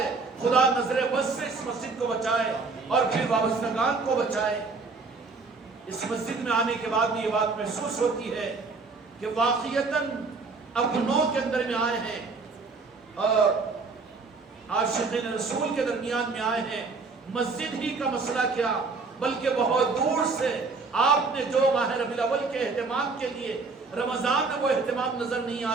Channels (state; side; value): quieter; left; 4.2 dB